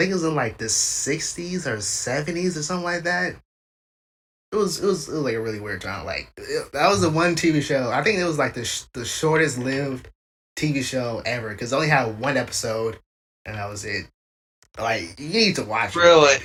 it was in like the 60s or 70s or something like that. It was like a really weird time. Like that was the one TV show. I think it was like the shortest lived TV show ever because it only had one episode, and that was it. Like you need to watch it. Really?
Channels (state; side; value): identical; both; correlation 1.00